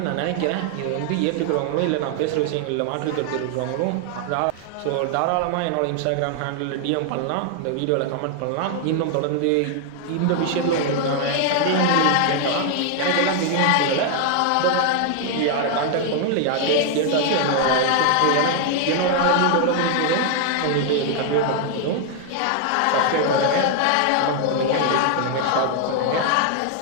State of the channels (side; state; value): both; different; correlation 0.00